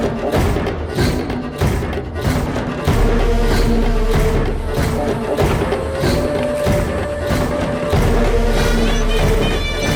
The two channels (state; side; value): identical; both; correlation 1.00